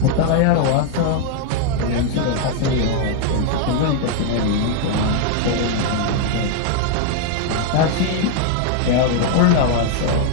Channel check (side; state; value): both; different; correlation 0.00